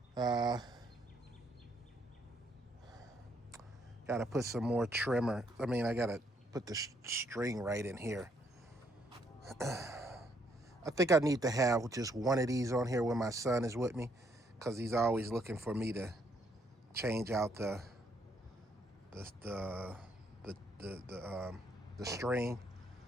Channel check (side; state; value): both; normal; correlation 0.71